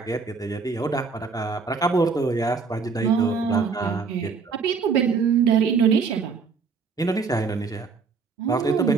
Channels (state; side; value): quieter; left; 5.0 dB